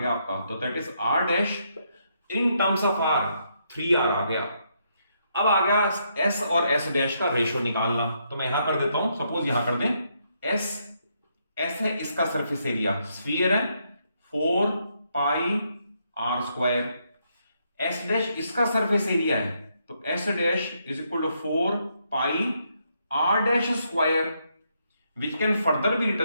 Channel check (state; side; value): inverted; both; correlation -0.76